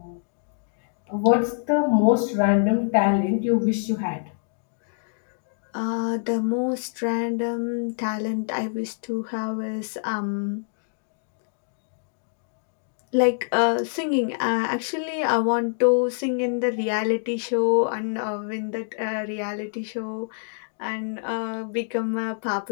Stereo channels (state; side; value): silent; right; digital silence